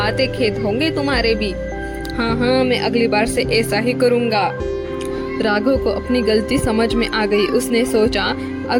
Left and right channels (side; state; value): both; identical; correlation 1.00